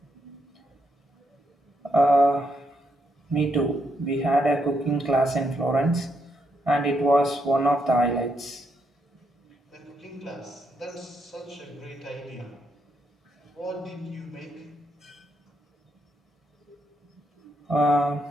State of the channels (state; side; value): normal; both; correlation 0.78